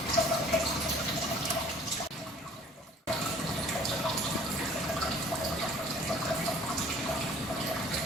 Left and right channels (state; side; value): normal; both; correlation 0.52